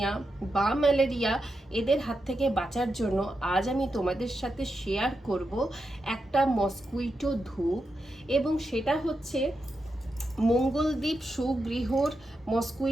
বা ম্যালেরিয়া এদের হাত থেকে বাঁচার জন্য আজ আমি তোমাদের সাথে শেয়ার করব একটা মসকুইটো ধূপ, এবং সেটা হচ্ছে মঙ্গলদ্বীপ সুগৃহর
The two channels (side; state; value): both; normal; correlation 0.87